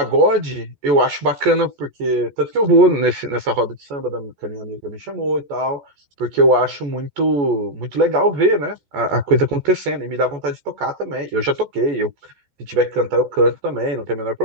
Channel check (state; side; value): late; left; 14 ms